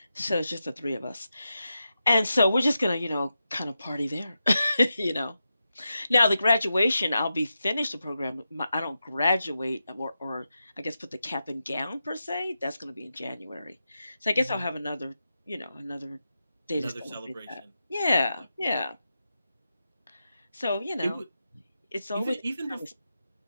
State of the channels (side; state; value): both; inverted; correlation -0.89